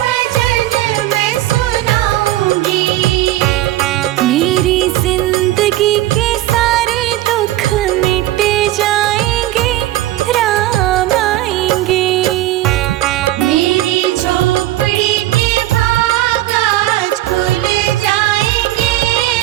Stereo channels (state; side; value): quieter; left; 15.2 dB